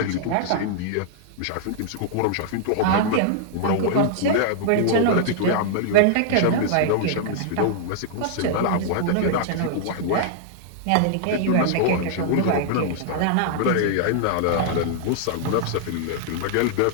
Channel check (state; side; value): different; both; correlation -0.01